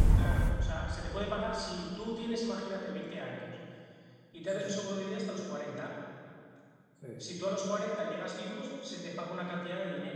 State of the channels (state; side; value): identical; both; correlation 1.00